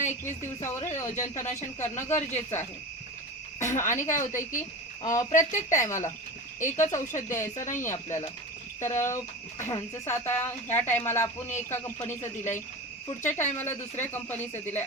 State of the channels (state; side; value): normal; both; correlation 0.28